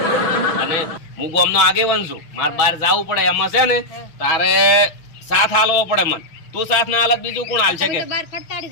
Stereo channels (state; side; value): late; right; 6.1 ms